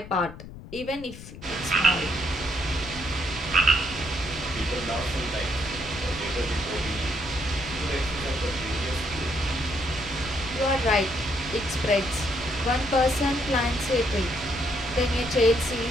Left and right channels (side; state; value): left; noise; rumble, 14 dB below the sound